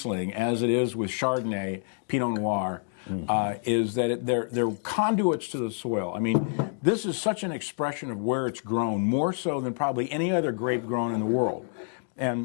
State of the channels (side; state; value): right; silent; digital silence